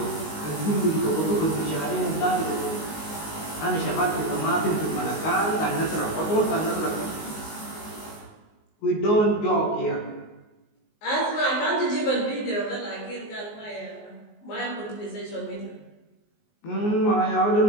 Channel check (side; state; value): right; late; 19 ms